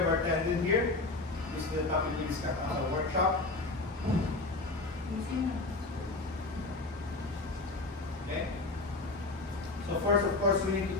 bartending here. This is the topic we discussed on our workshop. Okay? So first, of course, we need to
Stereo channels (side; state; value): right; quieter; 3.2 dB